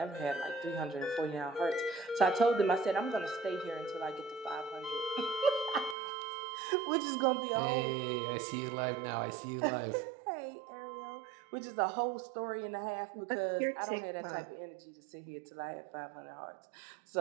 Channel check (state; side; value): drops out; left; at 6.0 s